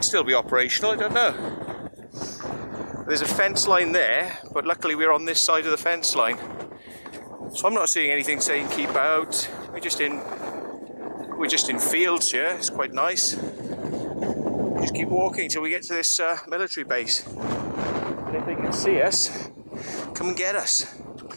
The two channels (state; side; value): inverted; both; correlation -1.00